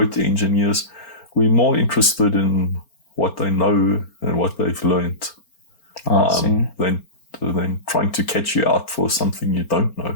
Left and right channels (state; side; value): late; right; 4.4 ms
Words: engineers, we're more interested in what they know and what they've learned, than trying to catch you out for something you don't know.